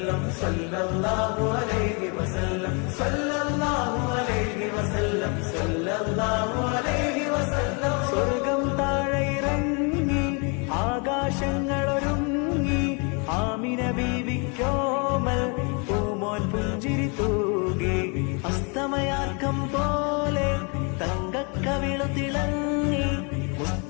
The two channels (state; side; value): quieter; right; 34.1 dB